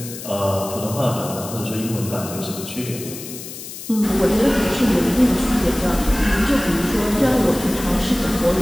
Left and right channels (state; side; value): noise; left; hiss, 11 dB below the sound